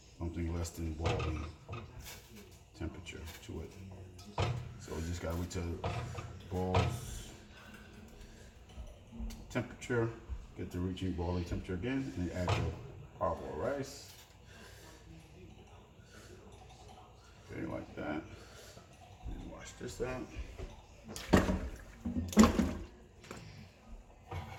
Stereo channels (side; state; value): both; identical; correlation 1.00